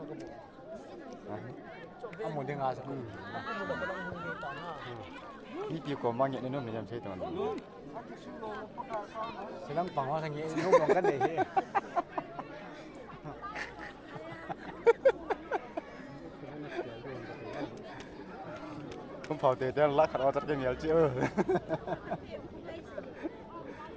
ông muốn đi ngã sao đi kiểu của mang nhận đến nó mình làm gì tưởng sẽ đang bằng hoa thành nghệ không còn cái này không phao tê tiền lắc khẩn thật cái nhiều chứ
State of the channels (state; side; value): identical; both; correlation 1.00